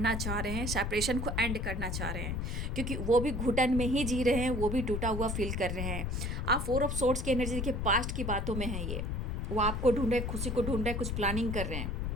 चाह रहे हैं, सेपरेशन को एंड करना चाह रहे हैं, क्योंकि वो भी घुटन में ही जी रहे हैं, वो भी टूटा हुआ फील कर रहे हैं। आप 4 ऑफ सोर्ड्स की एनर्जी देखिए, पास्ट की बातों में है ये। वो आपको ढूंढ रहे हैं, खुशी को ढूंढ रहे हैं, कुछ प्लानिंग कर रहे हैं।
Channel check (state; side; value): noise; left; rumble, 2 dB below the sound